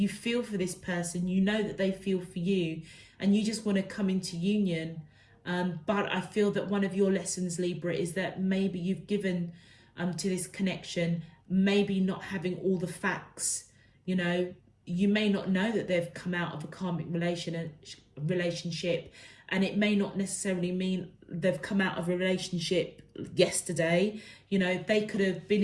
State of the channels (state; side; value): identical; both; correlation 1.00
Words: feel for this person, you know that they feel for you, and you just want to come into union. But I feel that one of your lessons, Libra, is that maybe you've given to this connection, maybe not having all the facts. You know, you may not know that they've come out of a karmic relationship, and it may not necessarily mean they've come out of a relationship yesterday. You know, they could have been